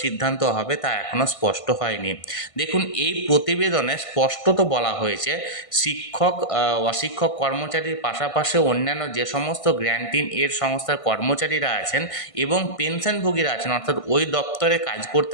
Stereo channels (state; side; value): late; right; 1.5 ms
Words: সিদ্ধান্ত হবে তা এখনও স্পষ্ট হয়নি। দেখুন, এই প্রতিবেদনে স্পষ্টত বলা হয়েছে, শিক্ষক, অশিক্ষক কর্মচারীর পাশাপাশি অন্যান্য যে সমস্ত গ্র্যান্টিন এড সংস্থার কর্মচারীরা আছেন এবং পেনশনভোগীরা আছেন, অর্থাৎ ওই দপ্তরে কাজ